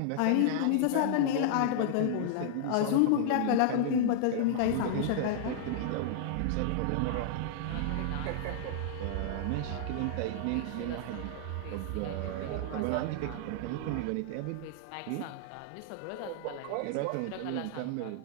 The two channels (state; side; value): different; both; correlation -0.01